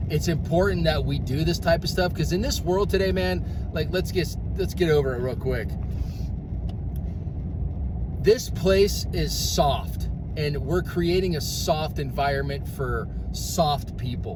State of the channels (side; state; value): both; identical; correlation 1.00